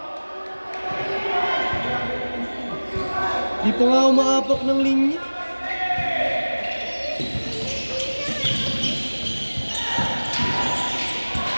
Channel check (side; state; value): both; inverted; correlation -1.00